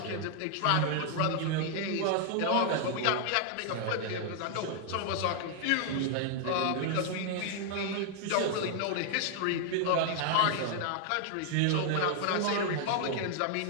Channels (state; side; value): different; both; correlation 0.00